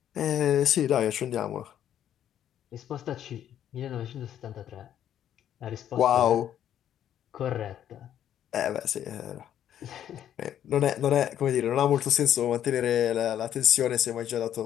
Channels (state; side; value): quieter; right; 10.5 dB